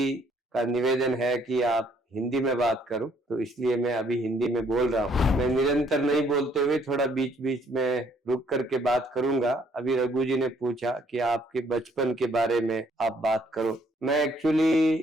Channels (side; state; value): both; normal; correlation 0.65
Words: का निवेदन है कि आप हिंदी में बात करो, तो इसलिए मैं अभी हिंदी में बोल रहा हूँ। मैं निरंतर नहीं बोलते हुए थोड़ा बीच बीच में रुक करके बात करूंगा। अभी रघु जी ने पूछा कि आपके बचपन के बारे में आप बात करो। मैं